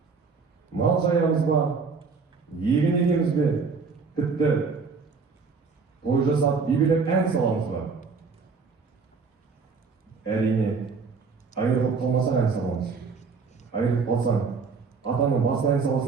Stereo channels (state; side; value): quieter; left; 4.9 dB